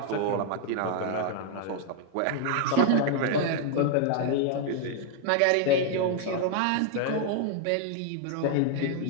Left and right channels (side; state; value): both; different; correlation 0.00